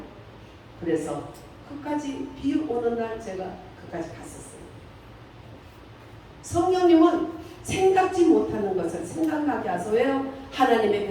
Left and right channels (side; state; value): both; identical; correlation 1.00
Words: 그래서 끝까지 비 오는 날 제가 끝까지 갔었어요. 성령님은 생각지 못하는 것을 생각나게 하소. 왜요? 하나님의